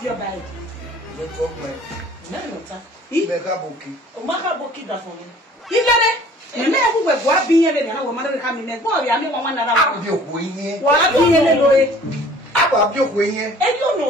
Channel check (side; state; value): both; normal; correlation 0.51